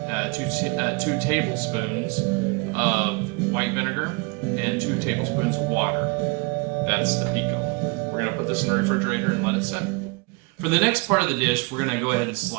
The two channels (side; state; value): left; quieter; 29.2 dB